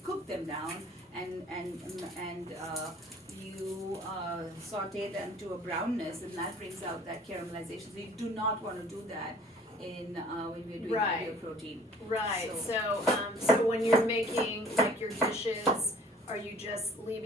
cook them down and you saute them to a brownness, and that brings out that caramelization. So you do not want to do that when we're doing Right. your protein. Right. So- So when you're making like your dishes are you just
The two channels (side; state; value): both; normal; correlation 0.52